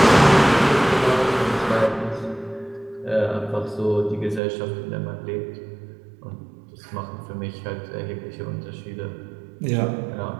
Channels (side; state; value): left; drops out; at 4.4 s